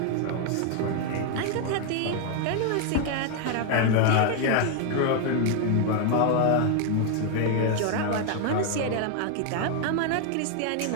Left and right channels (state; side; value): different; both; correlation 0.01